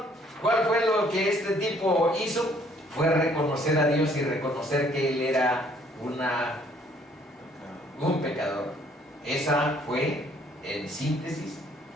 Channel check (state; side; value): normal; both; correlation 0.62